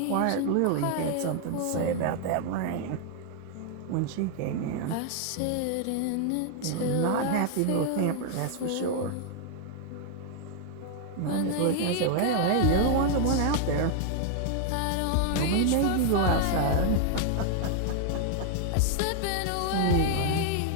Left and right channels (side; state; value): both; different; correlation 0.00